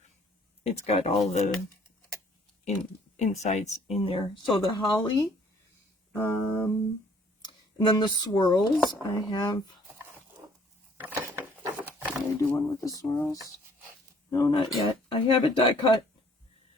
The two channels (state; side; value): normal; both; correlation 0.59